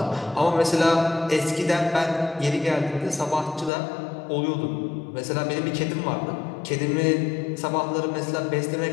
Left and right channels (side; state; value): right; drops out; at 3.7 s